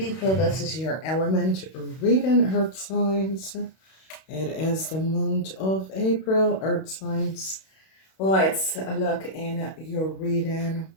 This is your element reading, Earth signs. It is the month of April, Earth signs. Let's look in your reading.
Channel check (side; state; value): right; late; 31 ms